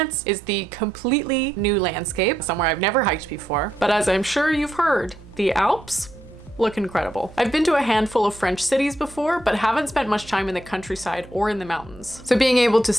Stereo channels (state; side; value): noise; right; hum, 21 dB below the sound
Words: is the completely new landscape, somewhere I've never hiked before. But as I'm sure you've heard, the Alps look incredible. I've been to a handful of French cities before, but haven't spent much time in the countryside or in the mountains. So being able to